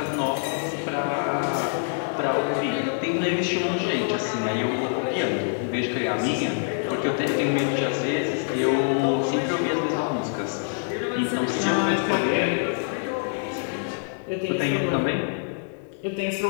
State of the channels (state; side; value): silent; right; digital silence